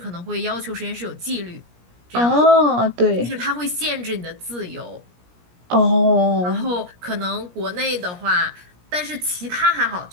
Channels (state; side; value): late; left; 17 ms